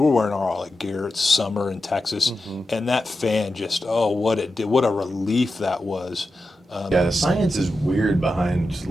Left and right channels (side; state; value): both; normal; correlation 0.90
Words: wearing all our gear. It's summer in Texas, and that fan just, what it did, what a relief that was. Yeah, the science is weird behind